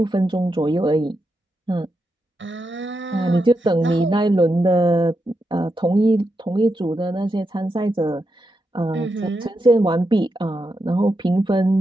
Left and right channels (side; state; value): both; normal; correlation 0.86